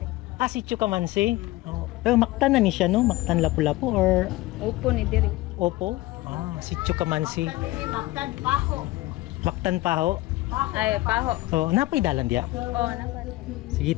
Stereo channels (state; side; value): quieter; right; 18.8 dB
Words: Sitio Kamansi. Oh. Pero Mactan na ni siya no? Mactan Lapu-Lapu or Upo ni Diri. Opo? Sitio Kamansi. Mactan Paho. Mactan Paho. Ay, Paho. Oh, napay dalan diya. Oo, napan. Sige,